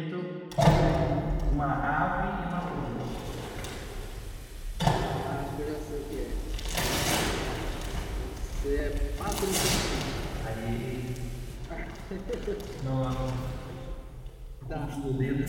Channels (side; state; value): both; identical; correlation 1.00